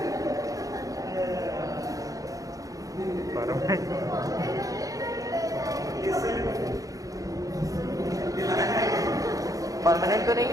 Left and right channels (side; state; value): left; late; 0.17 ms